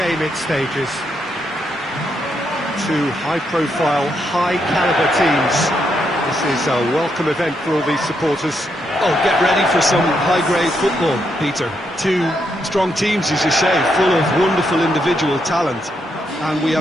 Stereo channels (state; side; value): normal; both; correlation 0.79